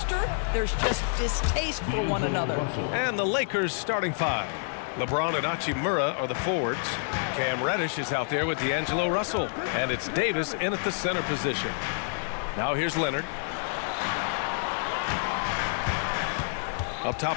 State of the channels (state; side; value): silent; right; 59 dB below the other